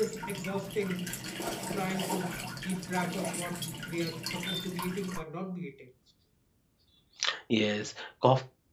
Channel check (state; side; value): identical; both; correlation 1.00